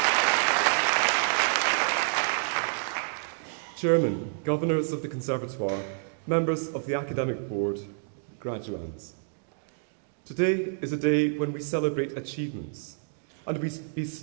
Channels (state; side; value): silent; left; digital silence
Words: Chairman, Governors of the Conservatoire, members of the Academic Board, graduands. Today is a day when we celebrate achievements and we